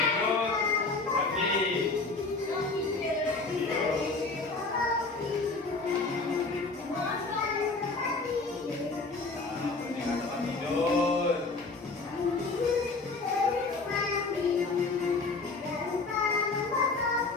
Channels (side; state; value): right; quieter; 3.7 dB